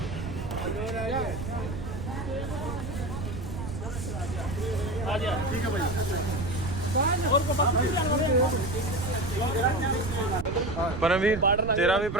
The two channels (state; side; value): noise; right; rumble, 6 dB below the sound